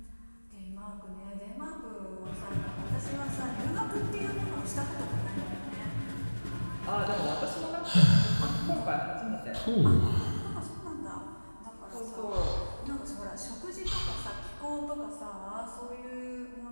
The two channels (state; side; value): inverted; both; correlation -1.00